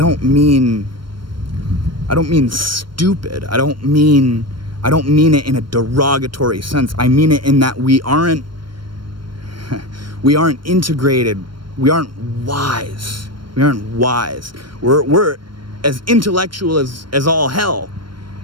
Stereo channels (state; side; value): late; left; 0.72 ms